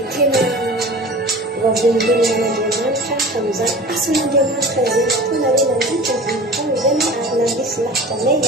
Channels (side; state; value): both; normal; correlation 0.38